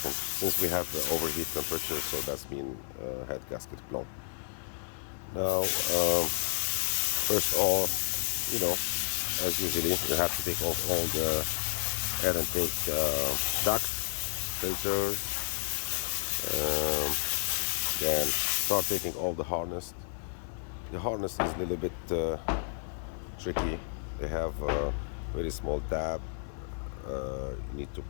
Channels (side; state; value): right; silent; digital silence